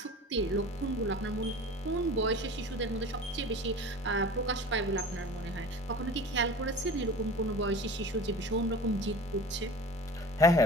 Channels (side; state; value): both; normal; correlation 0.38